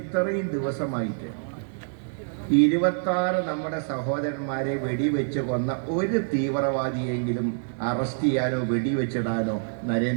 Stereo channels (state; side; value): silent; left; digital silence